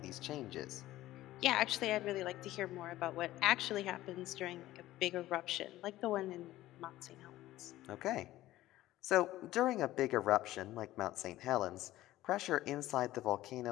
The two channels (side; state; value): right; quieter; 15.5 dB